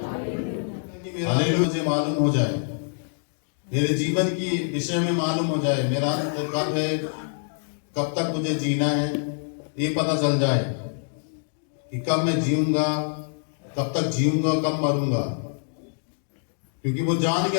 हालेलुया। मुझे मालूम हो जाए, मेरे जीवन की विषय में मालूम हो जाए, मेरा अंत कब है, कब तक मुझे जीना है, ये पता चल जाए कि कब मैं जीऊंगा, कब तक जीऊंगा, कब मरूंगा। क्योंकि वो जान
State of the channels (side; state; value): right; silent; digital silence